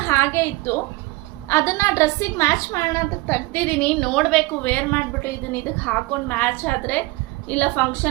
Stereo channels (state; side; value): quieter; left; 22.3 dB